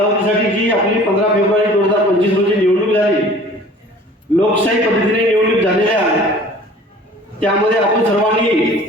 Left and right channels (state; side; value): normal; both; correlation 0.48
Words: जी आपली 15 फेब्रुवारी 2025 रोजी निवडणूक झाली, लोकशाही पद्धतीने निवडणूक झालेल्या आहे। त्यामध्ये आपण सर्वांनी